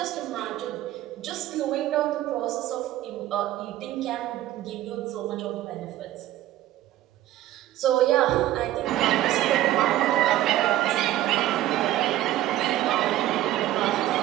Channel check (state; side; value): quieter; left; 14.2 dB